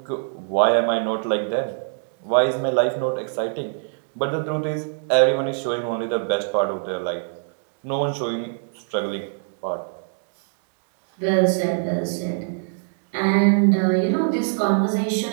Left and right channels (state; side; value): silent; left; digital silence